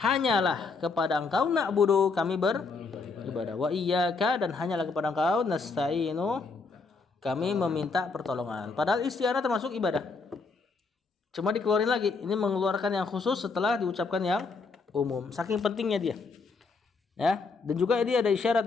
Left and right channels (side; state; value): right; quieter; 4.3 dB